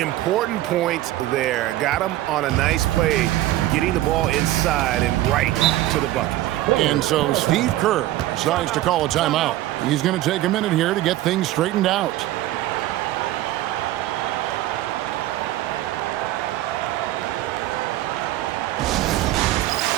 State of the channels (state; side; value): quieter; left; 15.1 dB